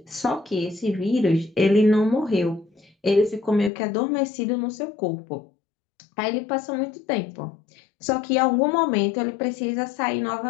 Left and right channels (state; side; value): drops out; right; at 3.7 s